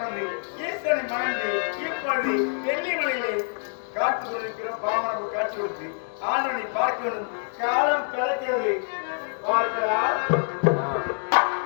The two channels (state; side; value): silent; right; 57 dB below the other